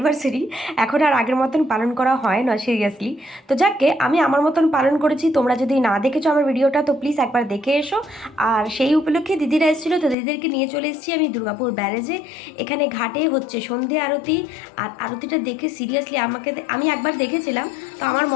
এখন আর আগের মতন পালন করা হয় না সিরিয়াসলি। তো যাকে আমি আমার মতন পালন করেছি, তোমরা যদি না দেখেছো আমার ভিডিওটা তো প্লিজ একবার দেখে এসো। আর সেই উপলক্ষে দিদিরা এসেছিলো, তো দিদিদেরকে নিয়ে চলে এসেছি আমি দুর্গাপুর ব্যারেজে। এখানে ঘাটে হচ্ছে সন্ধে আরতি, আর আরতিটা দেখে সিরিয়াসলি আমি একবার দেখেছিলাম, তো আমার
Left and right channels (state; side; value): drops out; right; at 10.2 s